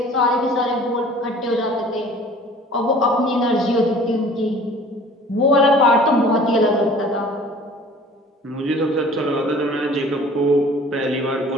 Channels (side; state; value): both; normal; correlation 0.48